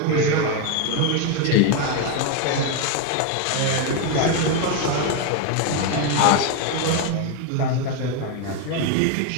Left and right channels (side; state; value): both; different; correlation 0.01